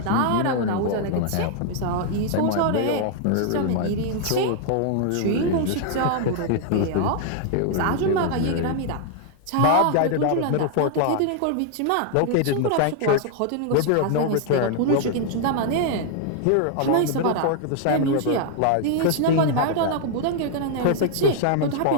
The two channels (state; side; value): different; both; correlation 0.00